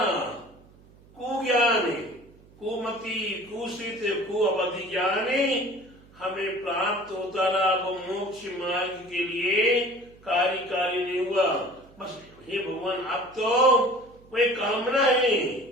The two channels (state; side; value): noise; right; hum, 26 dB below the sound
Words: ज्ञान है, कुमति, कुशित, कुअवधि ज्ञान हमें प्राप्त होता रहा। वो मोक्ष मार्ग के लिए कार्यकारी नहीं हुआ। बस हे भगवान, अब तो वही कामना है,